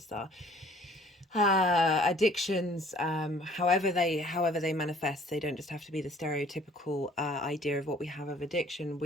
addictions, however they manifest. They don't just have to be the stereotypical idea of what we have of addiction.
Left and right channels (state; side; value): normal; both; correlation 0.55